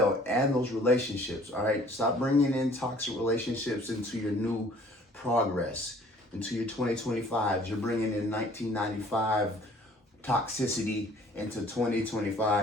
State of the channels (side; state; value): both; normal; correlation 0.54